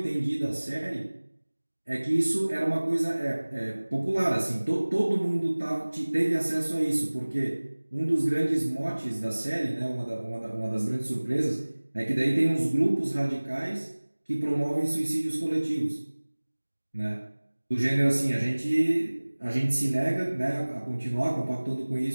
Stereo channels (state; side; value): inverted; both; correlation -1.00